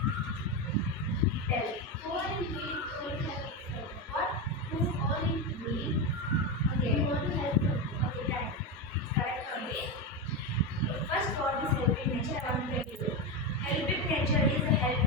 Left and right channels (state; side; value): normal; both; correlation 0.13